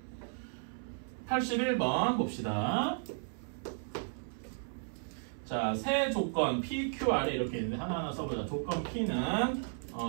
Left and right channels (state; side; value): silent; left; 55 dB below the other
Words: 81번 봅시다. 자, 세 조건 P, Q, R에 이렇게 있는데 하나하나 써보자. 조건 P는